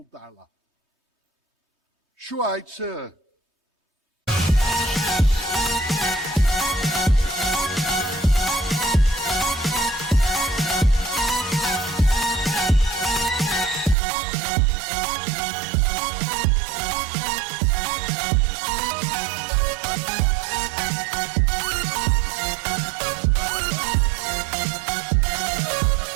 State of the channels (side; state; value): left; drops out; at 14.0 s